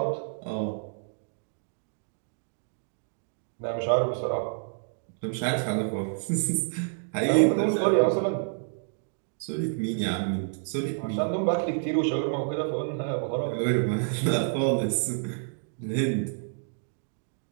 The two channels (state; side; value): silent; left; digital silence